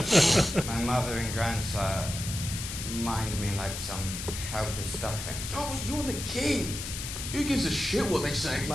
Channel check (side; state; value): left; noise; hiss, 7 dB below the sound